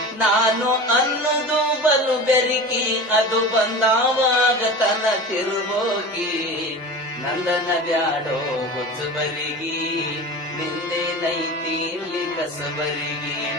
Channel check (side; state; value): both; normal; correlation 0.32